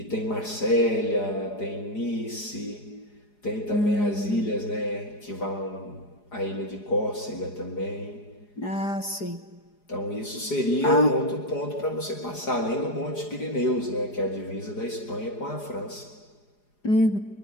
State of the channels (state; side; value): late; right; 4.9 ms